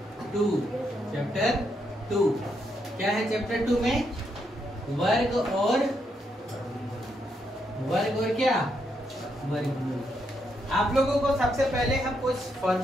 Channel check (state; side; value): normal; both; correlation 0.79